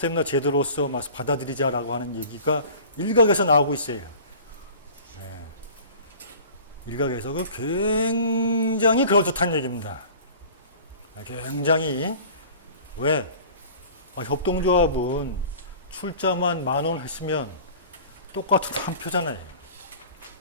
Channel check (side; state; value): both; inverted; correlation -0.43